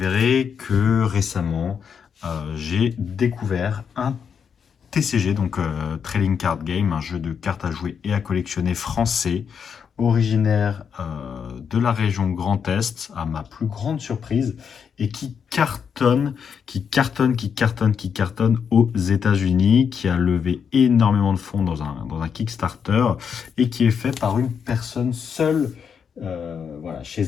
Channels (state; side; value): quieter; right; 7.0 dB